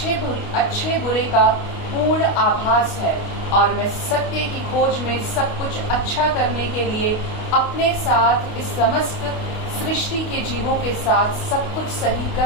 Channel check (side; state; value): right; late; 28 ms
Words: बुरे का पूर्ण आभास है और मैं सत्य की खोज में सब कुछ अच्छा करने के लिए अपने साथ इस समस्त सृष्टि के जीवों के साथ सब कुछ सही